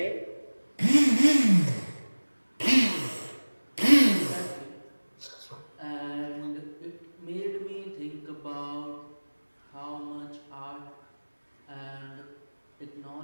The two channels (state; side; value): inverted; both; correlation -1.00